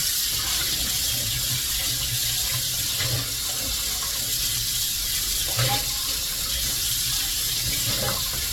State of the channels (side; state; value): both; identical; correlation 1.00